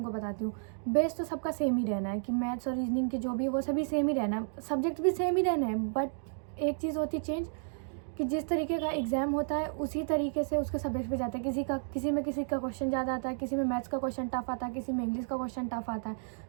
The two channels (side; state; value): left; silent; digital silence